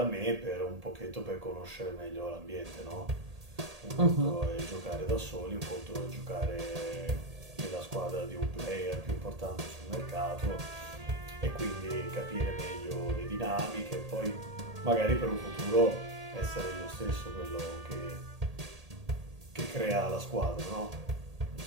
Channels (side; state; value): left; late; 1.8 ms